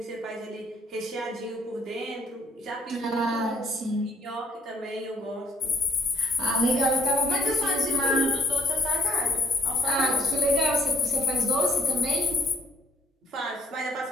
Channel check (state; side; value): normal; both; correlation 0.62